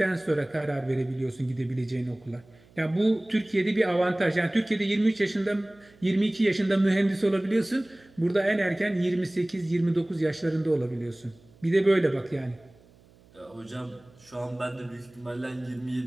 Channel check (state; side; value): noise; right; hum, 28 dB below the sound